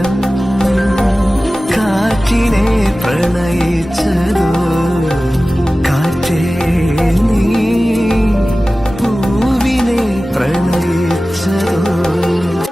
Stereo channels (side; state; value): both; normal; correlation 0.96